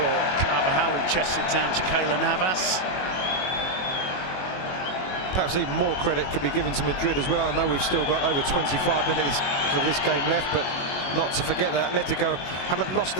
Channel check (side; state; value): right; late; 21 ms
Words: Carvajal, who chests it down to Keylor Navas. Perhaps even more credit could be given to Madrid as well. I know we've still got over 25 minutes of this game left, but not to forget that Atletico haven't lost